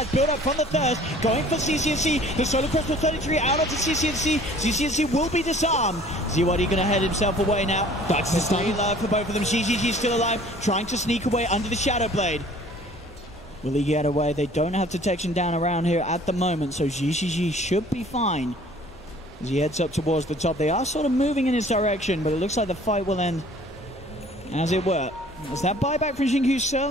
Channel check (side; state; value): both; normal; correlation 0.52